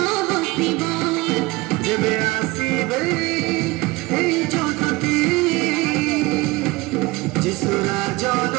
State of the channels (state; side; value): quieter; left; 21.9 dB